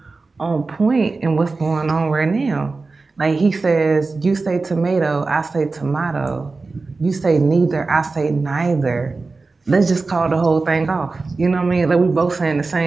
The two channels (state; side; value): quieter; left; 3.8 dB